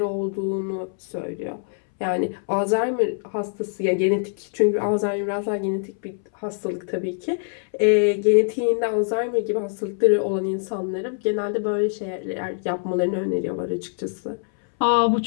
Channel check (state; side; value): silent; right; 63 dB below the other